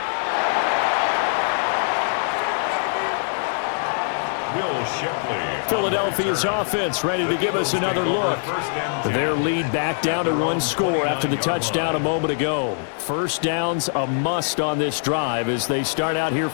Philadelphia's offense ready to give us another look. Their lead back down to one score after the touchdown a moment ago. First down's a must on this drive as they start out here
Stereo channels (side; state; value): right; silent; digital silence